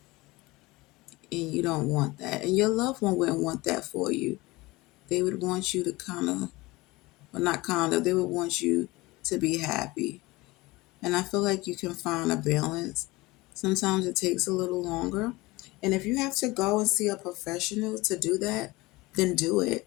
And you don't want that. And your loved one wouldn't want that for you. They would want you to kind of, well, not kind of, they would want you to be happy. And I feel like you can find a balance. Sometimes it takes a little longer. And if you have to go and see a professional to do that, then do it.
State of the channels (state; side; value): quieter; right; 21.4 dB